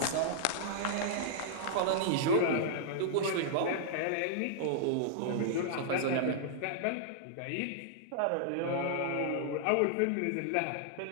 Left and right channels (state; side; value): different; both; correlation -0.01